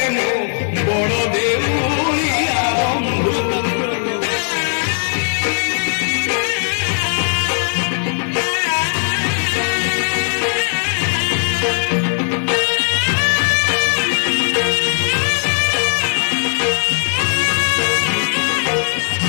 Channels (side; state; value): right; silent; 55 dB below the other